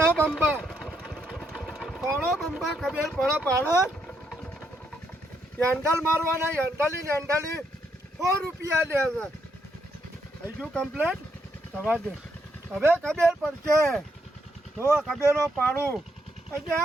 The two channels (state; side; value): normal; both; correlation 0.77